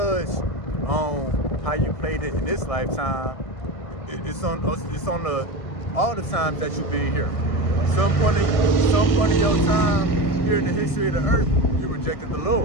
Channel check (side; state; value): right; late; 1.6 ms